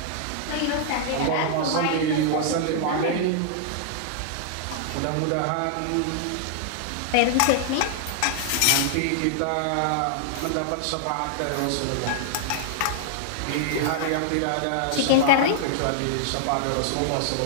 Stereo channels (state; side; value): different; both; correlation -0.01